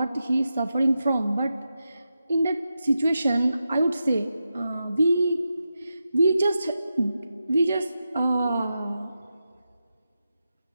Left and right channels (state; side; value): inverted; both; correlation -0.89